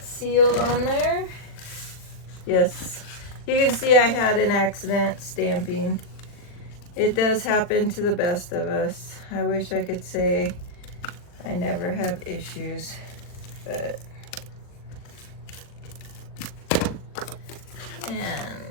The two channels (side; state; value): right; late; 39 ms